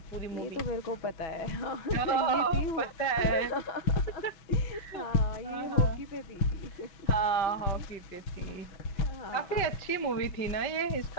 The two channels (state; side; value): late; right; 5.1 ms